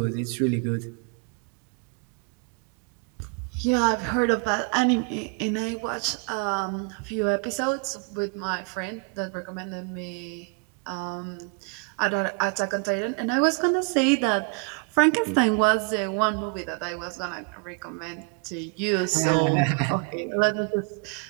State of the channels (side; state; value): left; quieter; 34.4 dB